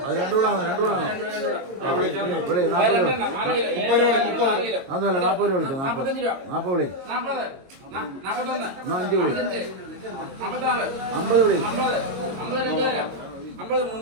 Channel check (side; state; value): left; late; 22 ms